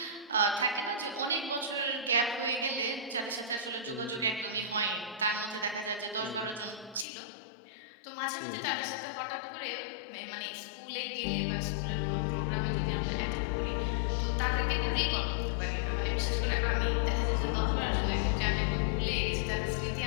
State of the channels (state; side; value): drops out; right; at 7.1 s